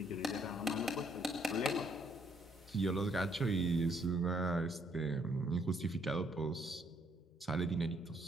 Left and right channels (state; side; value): normal; both; correlation 0.69